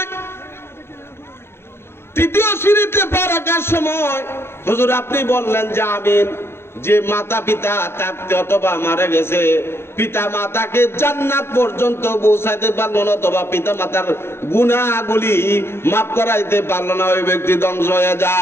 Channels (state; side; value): late; right; 0.12 ms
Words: রাখার সময় হুজুর আপনি বললেন যে আমিন। যে মাতা পিতা থাকতে অথবা মারা গেছে, পিতা মাতাকে জান্নাত পর্যন্ত পৌঁছাইতে পারলো না, অথবা পিতা মাতার গুনাহগুলি মাফ করাইতে পারলো না, ওই ব্যক্তি ধ্বংস হয়ে